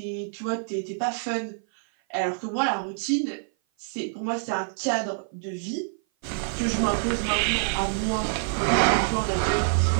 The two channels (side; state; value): left; silent; 56 dB below the other